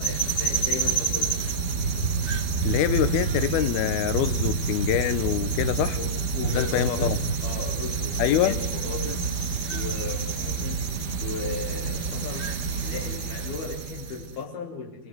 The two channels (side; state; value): right; late; 12 ms